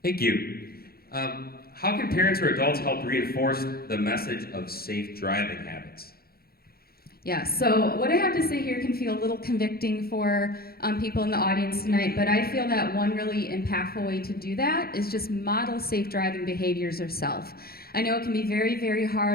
Thank you. How can parents or adults help reinforce the message of safe driving habits? Yeah, so what I have to say here can feel a little convicting for people in the audience tonight, but I feel that one really impactful way to do that is just model safe driving behaviors yourself. I know it can be very, very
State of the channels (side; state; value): right; late; 0.44 ms